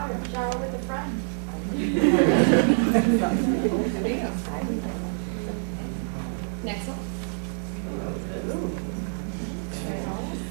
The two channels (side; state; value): left; silent; 61 dB below the other